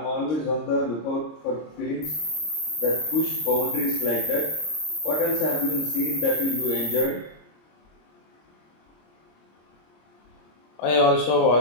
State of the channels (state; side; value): late; right; 26 ms